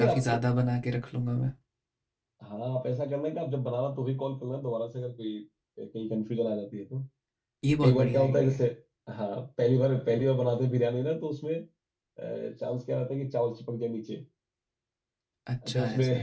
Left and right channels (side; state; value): both; identical; correlation 1.00